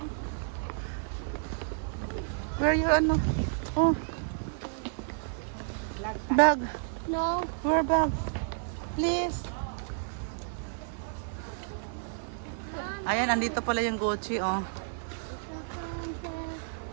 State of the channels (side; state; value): left; silent; 56 dB below the other